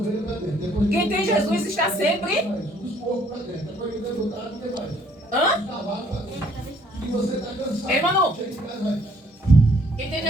Quem tem Jesus está sempre... Hã? Ei, Manu. Quem tem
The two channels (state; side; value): normal; both; correlation 0.63